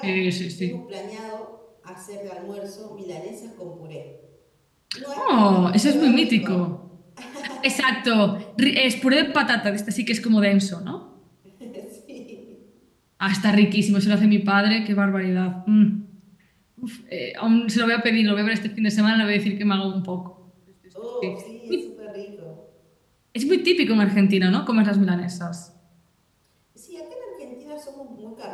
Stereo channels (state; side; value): identical; both; correlation 1.00